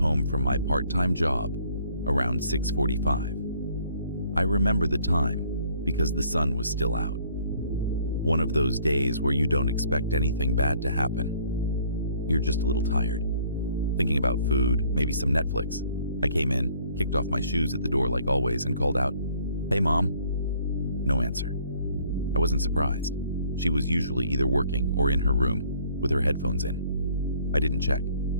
from my part-time job around 6:45. I remember the time because the sun was still out. One of those days where you don't expect anything bad to happen. You're just a little tired, thinking about food, maybe some Netflix. I came in, kicked off my shoes at the door like always, and called out, "Hey, Mom." No answer. I wasn't surprised. She was usually either working or in her room with her headphones in. I didn't check.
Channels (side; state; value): both; inverted; correlation -0.60